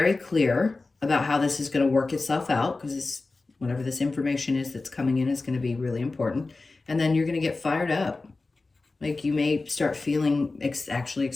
clear about how this is going to work itself out, because whatever this information is that's coming in is going to be really important. And then you're going to get fired up. Like you may start feeling actually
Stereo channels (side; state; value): right; quieter; 3.6 dB